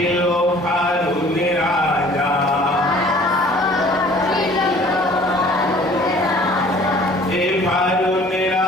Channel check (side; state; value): both; normal; correlation 0.52